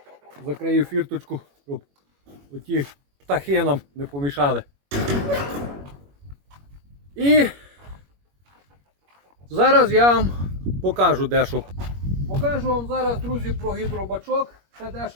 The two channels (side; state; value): left; late; 21 ms